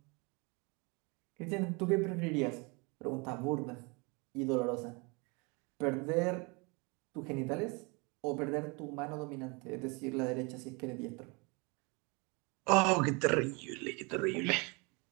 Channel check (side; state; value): left; quieter; 29.6 dB